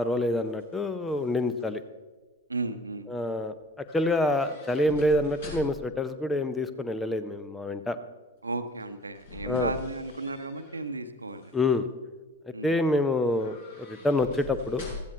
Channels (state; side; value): normal; both; correlation 0.50